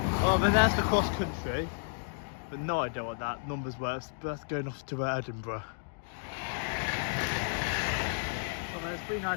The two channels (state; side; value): silent; right; digital silence